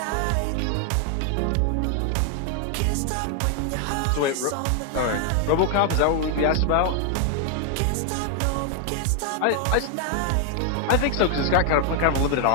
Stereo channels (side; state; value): both; different; correlation 0.00